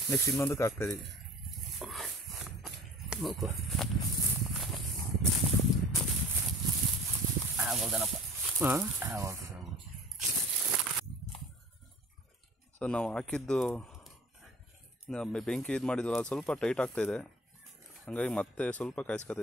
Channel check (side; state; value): both; normal; correlation 0.44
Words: ನೆಕ್ಸ್ಟ್ ಇನ್ನೊಂದಕ್ಕೆ ಹಾಕ್ತಾಯಿದ್ದೀವಿ. ಹಾಂ, ಸೊ ನಾವು ಹಾಕಿದ್ದು ಬೆಂಕಿ ಇದು ಮಾಡಿದ್ವಲ್ಲ ಸ್ವಲ್ಪ ಟೈಟ್ ಆಗ್ತಾಯಿದೆ, ಹಾಗಾಗಿ ಮತ್ತೆ ಸ್ವಲ್ಪ